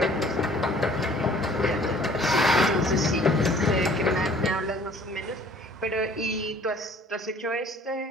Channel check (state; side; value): normal; both; correlation 0.54